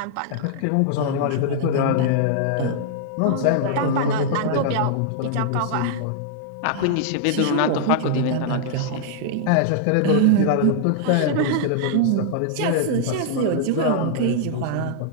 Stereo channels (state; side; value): different; both; correlation -0.01